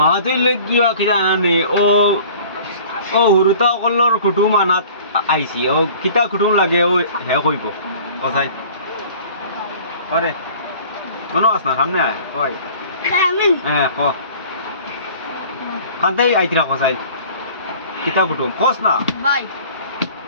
তুই লেগিয়া কিতা আনে ও হুরুতা কল্লর কুটুম আনাত আইছি ও কিতা কুটুম লাগে ও হে কইব কসাই আরে মনো আস না সামনে আয় কই আমি হ্যাঁ ক কান্তাই আইতিরা কসাই কিতা কুটুম কস না ভাই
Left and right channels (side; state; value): both; inverted; correlation -0.47